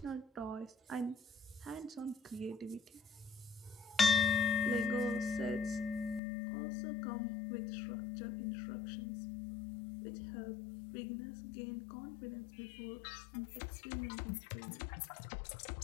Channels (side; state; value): right; drops out; at 6.2 s